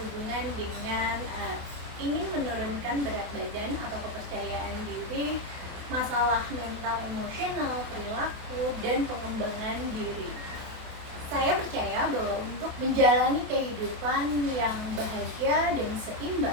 dengan ingin menurunkan berat badan atau kepercayaan diri, masalah mental emosional, perilaku, dan pengembangan diri. Saya percaya bahwa untuk menjalani kehidupan yang bahagia dan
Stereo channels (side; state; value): left; late; 28 ms